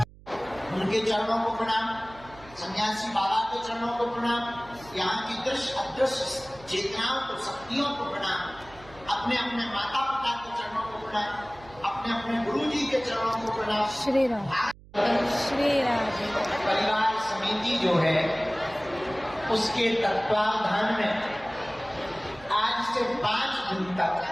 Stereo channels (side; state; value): right; noise; hum, 22 dB below the sound